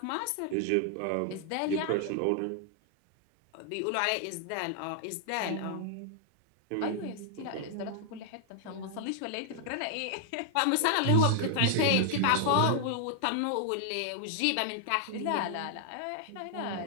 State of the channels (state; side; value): different; both; correlation 0.00